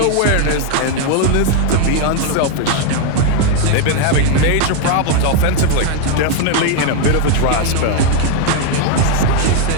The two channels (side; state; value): both; different; correlation 0.01